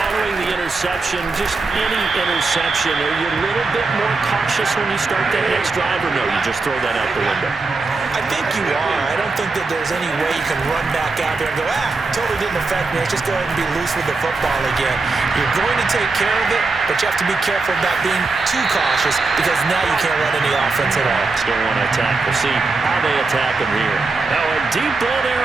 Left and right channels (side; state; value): left; quieter; 3.8 dB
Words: the interception, just any interception, are you a little bit more cautious when you start that next drive, or no, you just throw that out the window? I think you are. I don't think that there's any way you can run back out there and go, totally didn't affect me. Let's just go ahead and be loose with the football again. You're going to take care of it, but you have to be careful about being too cautious because now you can't run any offense at all. Still want to attack. We'll see how they attack him here. Now a deep ball there